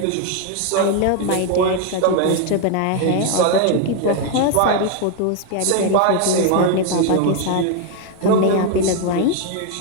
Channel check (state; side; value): different; both; correlation 0.01